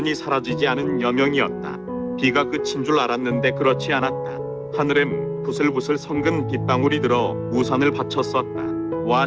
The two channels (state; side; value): identical; both; correlation 1.00